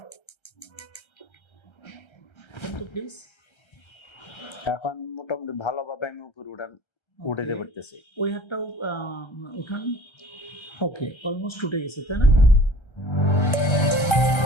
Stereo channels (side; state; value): right; late; 1.3 ms